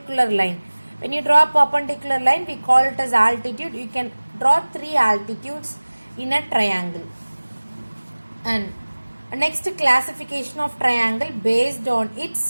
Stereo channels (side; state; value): both; inverted; correlation -1.00